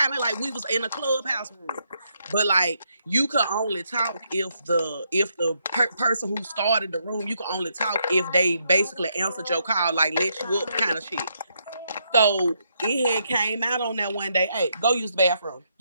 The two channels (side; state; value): both; inverted; correlation -0.77